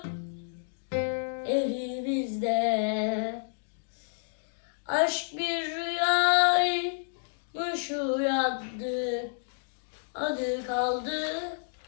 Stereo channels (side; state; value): right; silent; digital silence